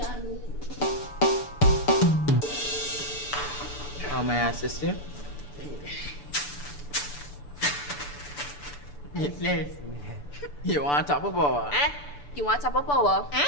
of me. How may I assist you? Yes. You want top of power? You want top of power?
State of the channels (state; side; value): late; right; 6.9 ms